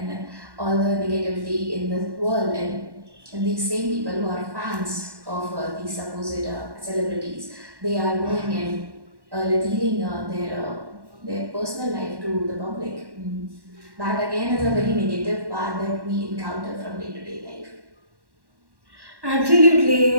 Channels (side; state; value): left; late; 1.1 ms